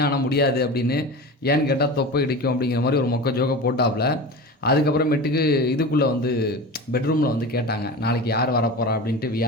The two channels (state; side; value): normal; both; correlation 0.30